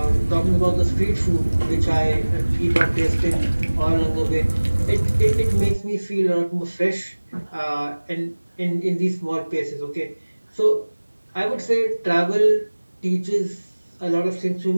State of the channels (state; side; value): inverted; both; correlation -1.00